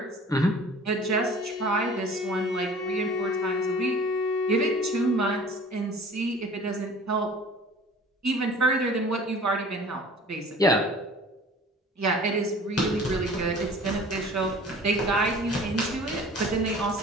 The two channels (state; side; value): normal; both; correlation 0.46